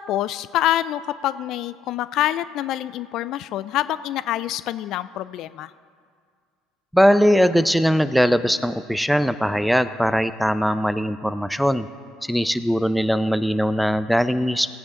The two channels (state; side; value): normal; both; correlation 0.87